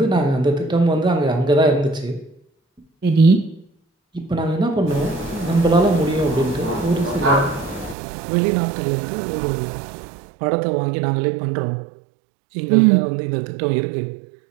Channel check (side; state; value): left; drops out; at 8.0 s